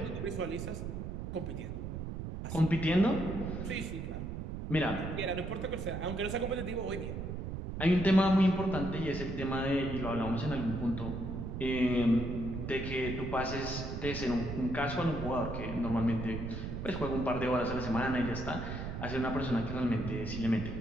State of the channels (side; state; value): right; noise; rumble, 5 dB below the sound